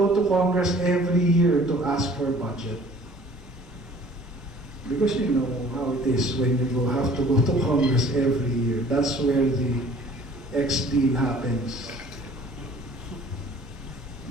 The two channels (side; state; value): both; normal; correlation 0.51